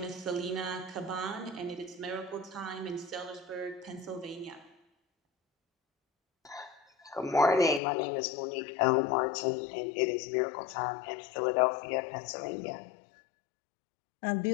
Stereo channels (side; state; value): right; drops out; at 7.8 s